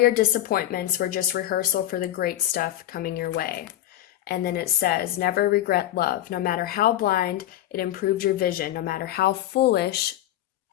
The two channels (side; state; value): right; quieter; 13.3 dB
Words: disappointments were just rehearsal for the great stuff coming your way. And then it says, never regret love. No matter how blind, it improved your vision. No matter how foolish,